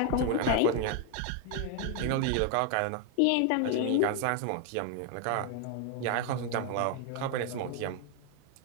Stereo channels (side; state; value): both; different; correlation 0.01